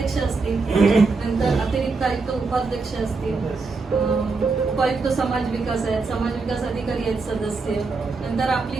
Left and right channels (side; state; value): left; quieter; 4.1 dB